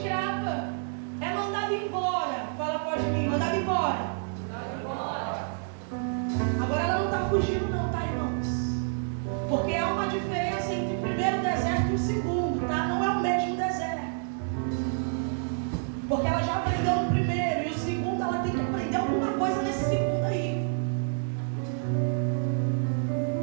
é mandada embora. Fala após mim, mandada embora. Agora ela não está fugindo não, tá, irmãos? Porque há uma diferença entre o primeiro deserto e o segundo, tá? Não é o mesmo deserto. Porque ela já aprendeu no primeiro, e o segundo ela tem que aprender alguma coisa nesse segundo aí.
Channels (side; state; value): left; silent; digital silence